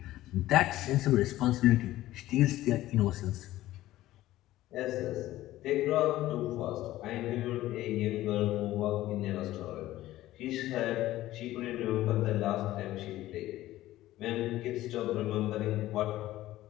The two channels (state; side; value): quieter; right; 15.4 dB